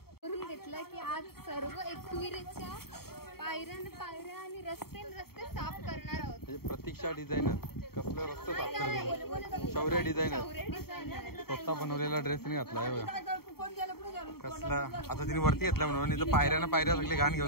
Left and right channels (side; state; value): right; late; 0.95 ms